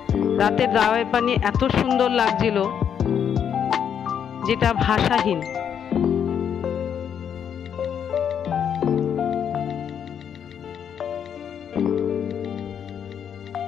রাতের দাওয়াই পানি এত সুন্দর লাগছিল যেটা ভাষাহীন।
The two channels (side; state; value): right; quieter; 8.3 dB